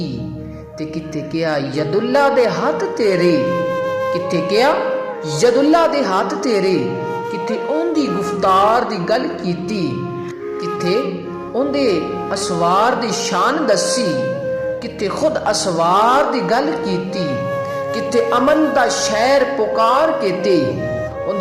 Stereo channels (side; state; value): both; identical; correlation 1.00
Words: ते किथे क्या यदुल्ला दे हाथ तेरे, किथे क्या यदुल्ला दे हाथ तेरे, किथे ओंदी गुफ्तार दी गल कीती। किथे ओंदे असवार दी शान दसी, किथे खुद असवार दी गल कीती। किथे अमन दा शहर पुकार के ते